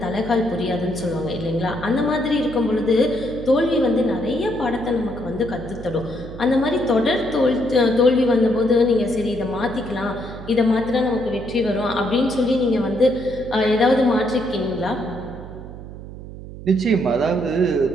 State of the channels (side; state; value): right; noise; hum, 13 dB below the sound